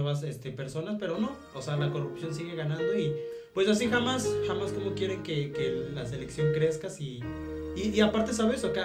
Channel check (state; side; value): identical; both; correlation 1.00